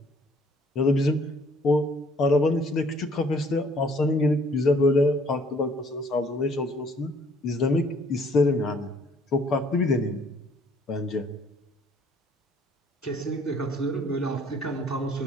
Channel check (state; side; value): normal; both; correlation 0.60